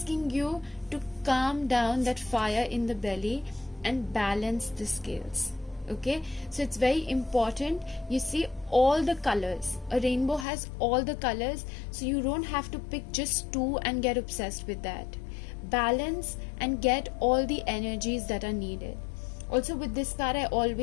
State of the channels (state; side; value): drops out; right; at 10.5 s